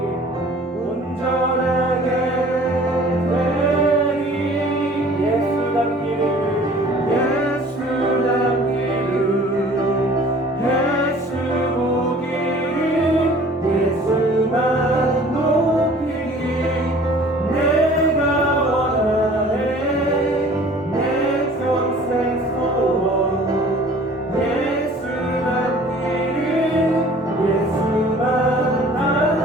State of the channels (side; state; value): both; normal; correlation 0.50